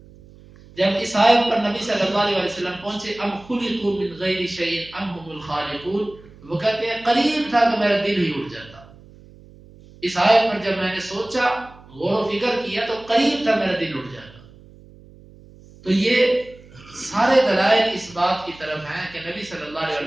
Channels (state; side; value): noise; right; hum, 23 dB below the sound